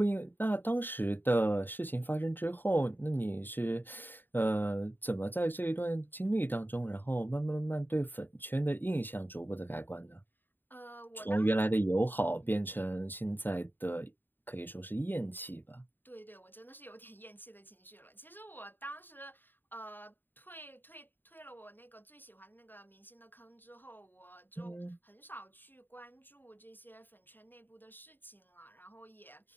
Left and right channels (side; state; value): right; late; 0.093 ms